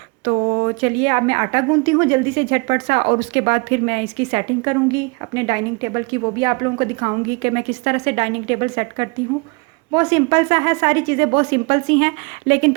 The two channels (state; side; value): quieter; left; 30.5 dB